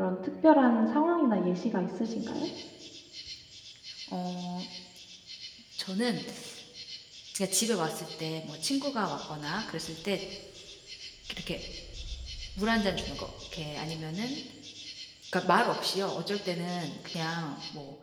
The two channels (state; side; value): identical; both; correlation 1.00